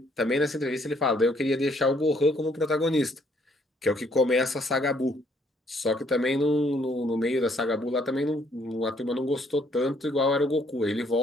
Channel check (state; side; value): normal; both; correlation 0.66